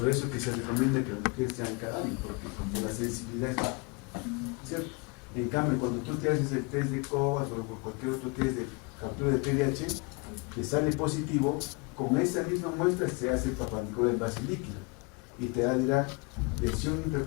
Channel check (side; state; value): right; quieter; 29.1 dB